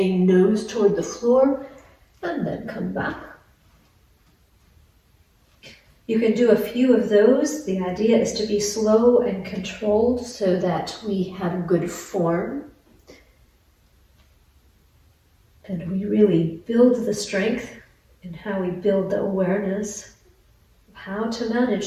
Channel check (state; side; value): identical; both; correlation 1.00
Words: nose toward the floor, and then come back. You can do a few of those. The idea is to be slow and controlled so that we have good form. And we really build the strength in how we build the awareness of how to